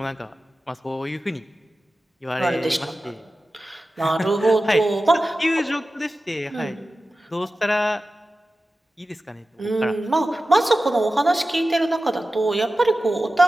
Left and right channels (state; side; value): normal; both; correlation 0.94